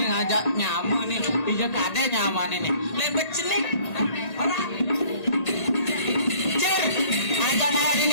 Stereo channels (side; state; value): right; late; 1.8 ms